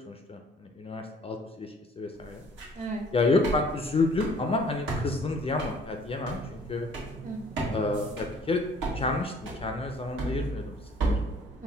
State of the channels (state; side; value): normal; both; correlation 0.56